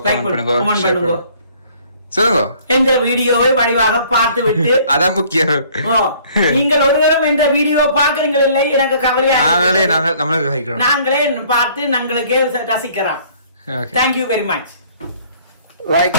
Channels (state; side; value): inverted; both; correlation -0.57